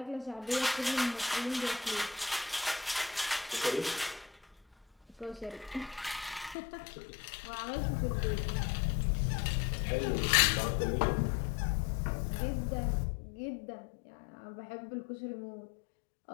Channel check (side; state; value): right; drops out; at 6.6 s